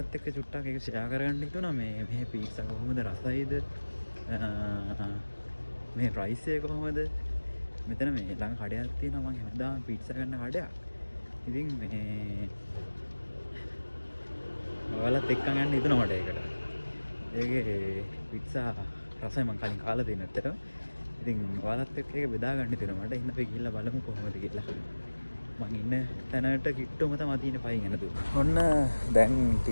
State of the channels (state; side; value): inverted; both; correlation -1.00